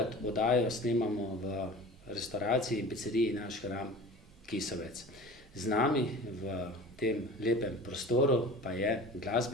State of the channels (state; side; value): normal; both; correlation 0.39